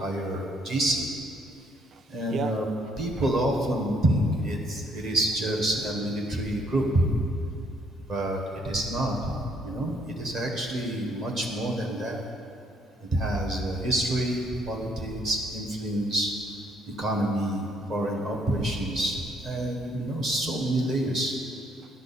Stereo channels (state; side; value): normal; both; correlation 0.69